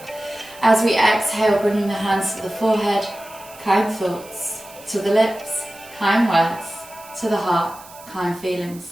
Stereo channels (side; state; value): right; noise; hiss, 20 dB below the sound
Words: As we exhale, bringing the hands to the forehead, kind thoughts. To the lips, kind words. To the heart, kind